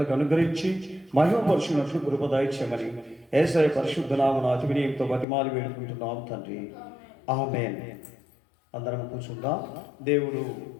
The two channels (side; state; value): right; drops out; at 5.2 s